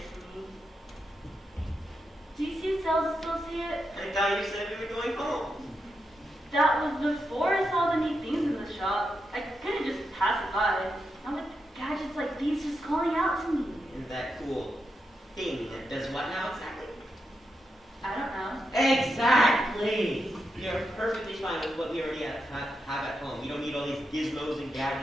for me. Do you see a sales associate? I thought you said we were going home. That was before I saw the neat things in the shop. I couldn't just pass it by. Now with gadgets like these just calling out to me. And that cool thing that does what now exactly? I don't know. Exactly! You're perfectly fine with what we already have at home. You don't need all these gizmos and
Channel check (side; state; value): both; normal; correlation 0.85